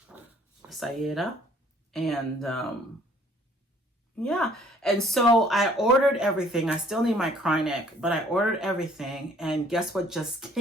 And yeah, and so I ordered everything. I still need my cry neck, but I ordered everything. And guess what just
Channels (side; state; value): both; normal; correlation 0.58